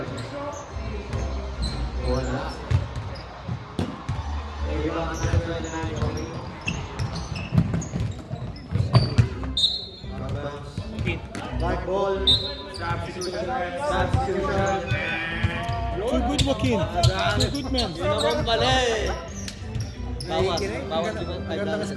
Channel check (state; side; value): identical; both; correlation 1.00